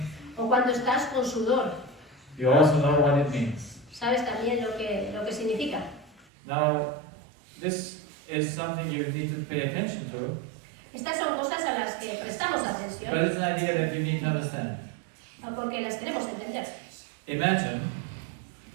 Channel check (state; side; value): drops out; left; at 6.2 s